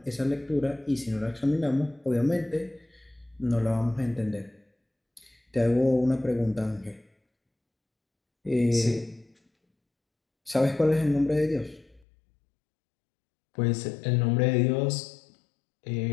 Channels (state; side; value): drops out; right; at 12.1 s